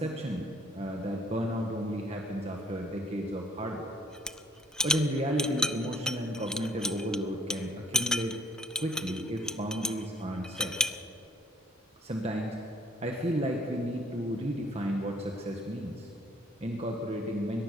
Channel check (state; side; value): normal; both; correlation 0.59